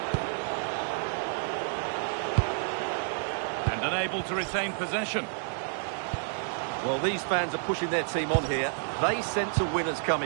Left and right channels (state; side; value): silent; left; 58 dB below the other